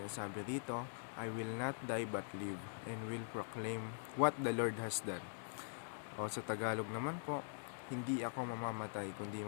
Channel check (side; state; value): right; silent; digital silence